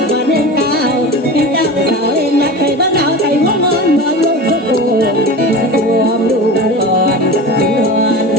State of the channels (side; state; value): both; normal; correlation 0.31